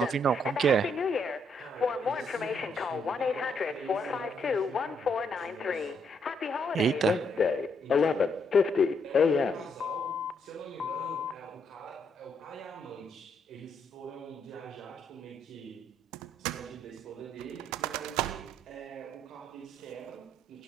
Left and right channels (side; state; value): both; normal; correlation 0.74